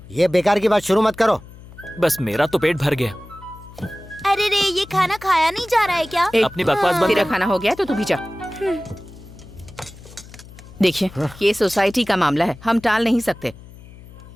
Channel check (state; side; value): noise; left; hum, 19 dB below the sound